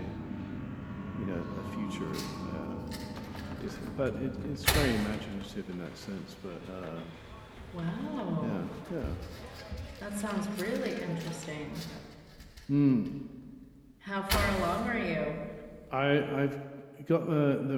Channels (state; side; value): identical; both; correlation 1.00